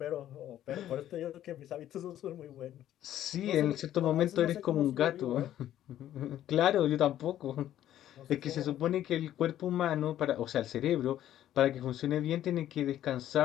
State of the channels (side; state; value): right; quieter; 12.1 dB